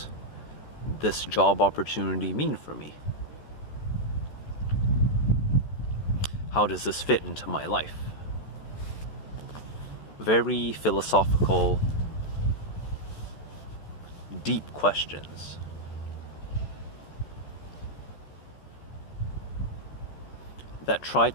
this job opportunity mean for me? How does this fit into my life? Very philosophical, deep questions. That try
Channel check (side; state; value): right; late; 14 ms